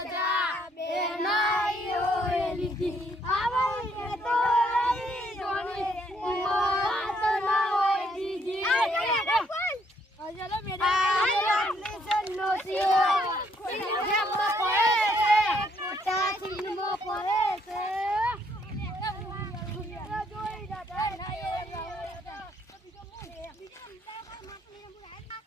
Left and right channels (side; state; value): both; normal; correlation 0.69